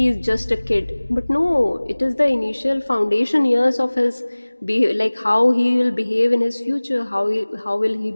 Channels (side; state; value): both; inverted; correlation -1.00